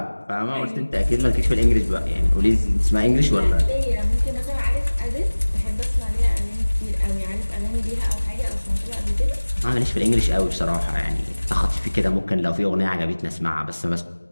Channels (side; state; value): both; inverted; correlation -1.00